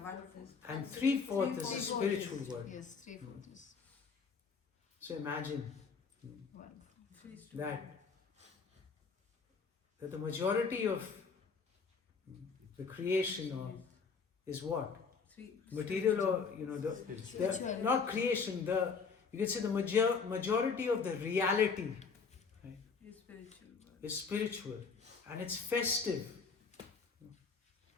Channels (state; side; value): quieter; right; 5.3 dB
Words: 1/4. And 3/4 is the spiritual world. Yes, 3/4 is So imagine 1/4. that the majority of the creation is what? Material or, not creation, you can say the majority of the reality, right, is spiritual. And it's festive.